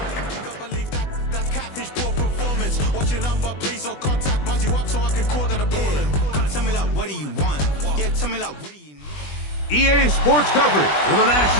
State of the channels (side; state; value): right; late; 20 ms